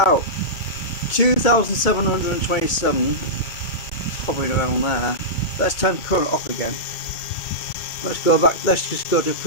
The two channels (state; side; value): late; right; 2.2 ms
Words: out. 2,727, hovering around there. Let's turn current off again. Let's go back. Let's just go to